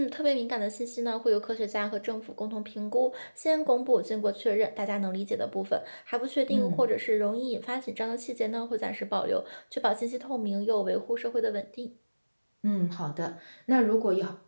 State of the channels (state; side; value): inverted; both; correlation -1.00